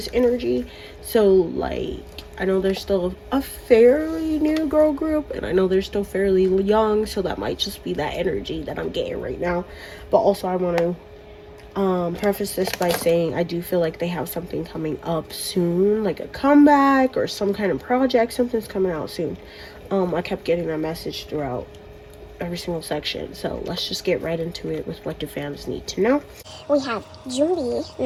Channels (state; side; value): identical; both; correlation 1.00